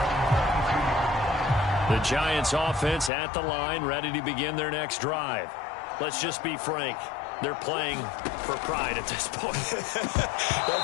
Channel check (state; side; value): drops out; right; at 3.1 s